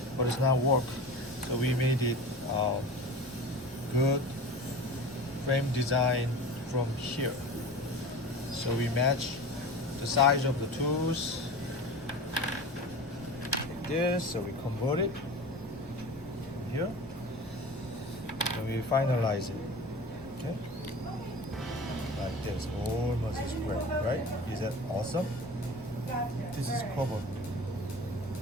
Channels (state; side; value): normal; both; correlation 0.34